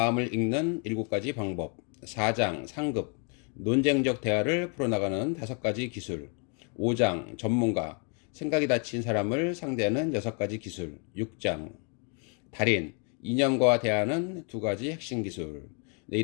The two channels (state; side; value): quieter; right; 38.8 dB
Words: 읽는 7가지 방법. 4장 상급 논쟁적 대화를 풀어나가는 5가지 기술. 5장 전문가 생각이 닫힌 사람을 상대하는 6가지 기술. 6장 달인 인연과 대하는 2가지 핵심 기술. 네,